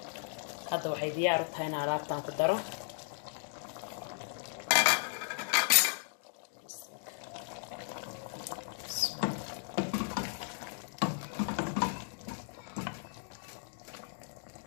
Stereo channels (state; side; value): silent; right; digital silence